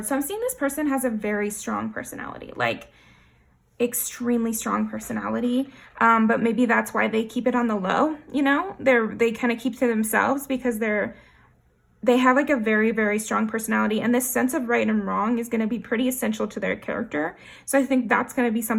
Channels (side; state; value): both; identical; correlation 1.00